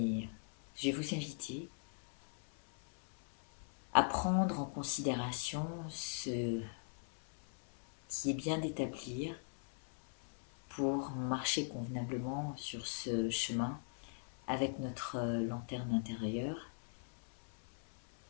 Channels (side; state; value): right; silent; 51 dB below the other